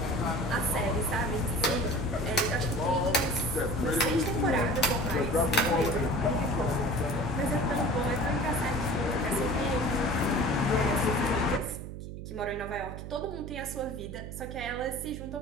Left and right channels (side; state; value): right; noise; hum, 9 dB below the sound